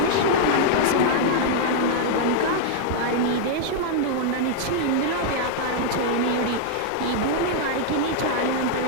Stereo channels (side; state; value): both; different; correlation -0.01